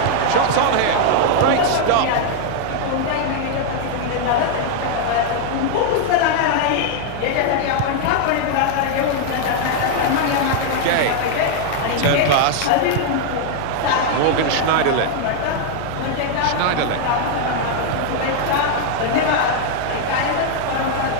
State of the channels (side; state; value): both; different; correlation 0.00